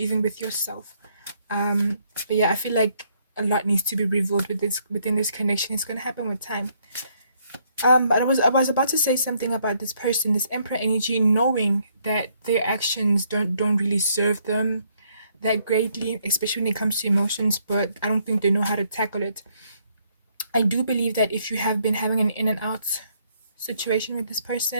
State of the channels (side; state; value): both; inverted; correlation -0.70